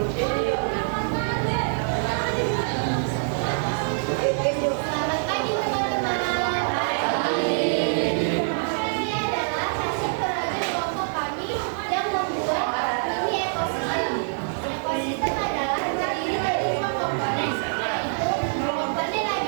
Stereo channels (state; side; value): silent; left; digital silence